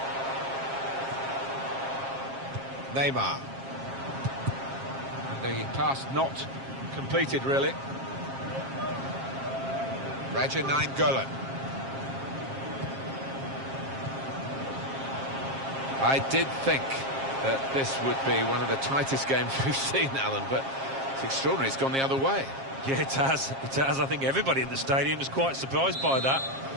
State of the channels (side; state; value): left; late; 7.4 ms